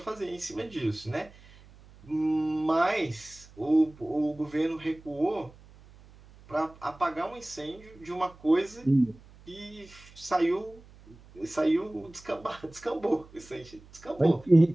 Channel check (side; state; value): right; noise; hum, 23 dB below the sound